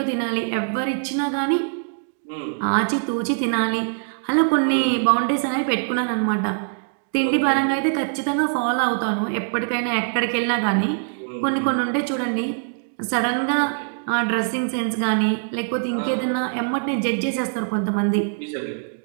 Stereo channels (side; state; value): left; silent; digital silence